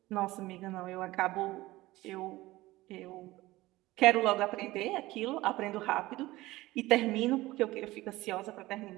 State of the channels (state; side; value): quieter; left; 18.4 dB